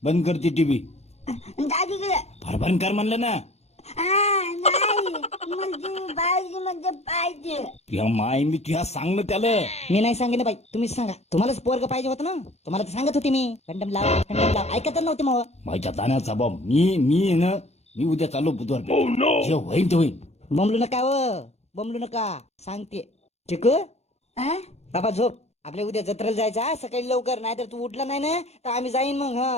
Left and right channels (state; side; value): late; right; 0.31 ms